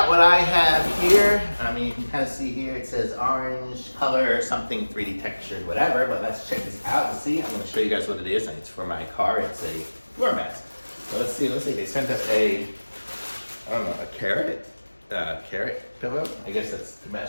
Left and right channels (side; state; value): both; inverted; correlation -1.00